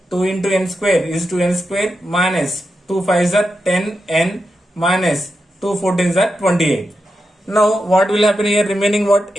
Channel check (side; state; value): both; normal; correlation 0.88